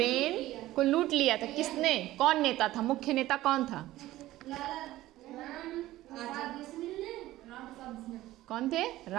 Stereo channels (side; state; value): left; quieter; 15.9 dB